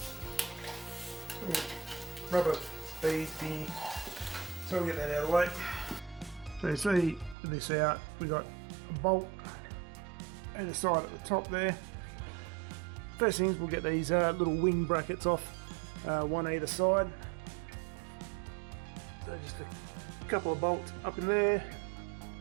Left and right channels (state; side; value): drops out; left; at 7.4 s